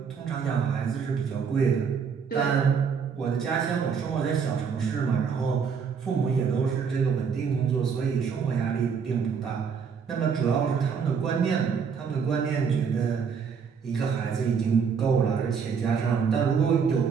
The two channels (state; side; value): quieter; left; 6.3 dB